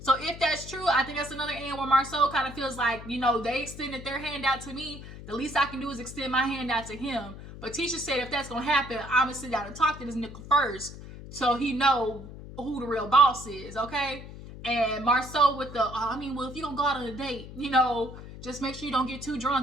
So if that's true, I think that's another end where Marcel kind of feels like, you know, they extended their hand out to me. The least I can do is extend my hand out to him. But Tisha said if that's going to happen, I'm going to sit down and talk to this nigga first, so he know who the real boss is, okay? And Marcel with the, I mean, well, if you don't go out on a date, you know, just make sure you don't get too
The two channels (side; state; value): left; noise; hum, 13 dB below the sound